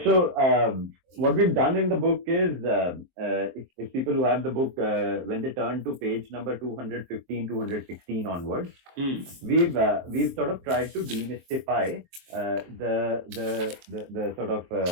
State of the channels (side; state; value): left; late; 23 ms